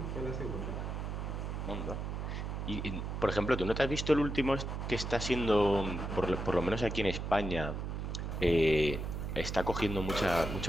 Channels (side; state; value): right; noise; hum, 4 dB below the sound